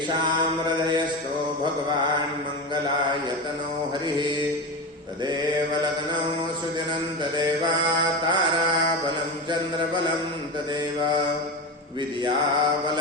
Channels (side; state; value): both; normal; correlation 0.21